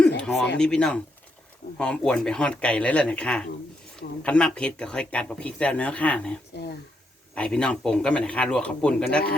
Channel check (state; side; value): normal; both; correlation 0.79